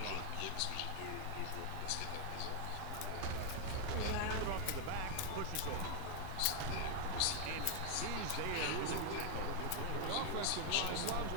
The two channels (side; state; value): both; different; correlation 0.00